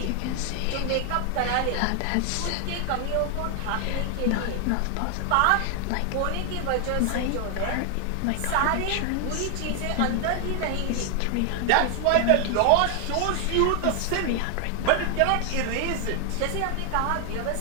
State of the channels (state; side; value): different; both; correlation 0.00